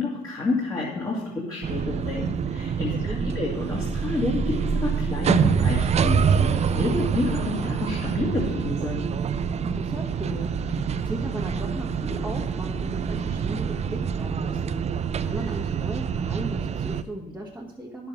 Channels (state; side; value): quieter; left; 3.8 dB